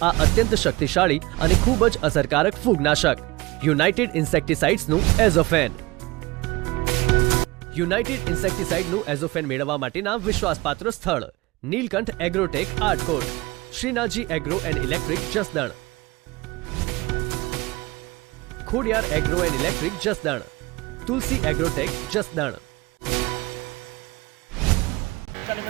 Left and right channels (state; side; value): quieter; left; 21.8 dB